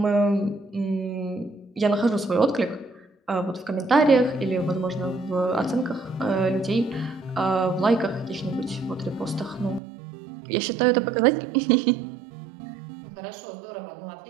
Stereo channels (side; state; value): left; drops out; at 9.8 s